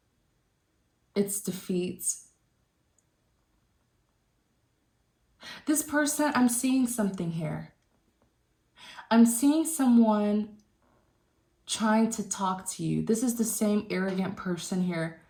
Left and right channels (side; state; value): both; identical; correlation 1.00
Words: It's defeat. This person, I'm seeing something here. I'm seeing someone trying to talk to you. This is the same arrogant person here.